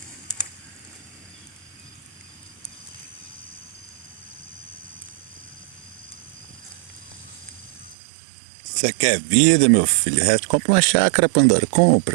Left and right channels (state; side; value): drops out; left; at 8.0 s